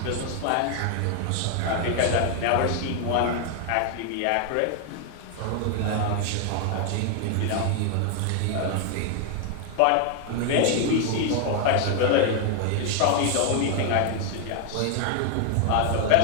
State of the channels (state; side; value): different; both; correlation 0.00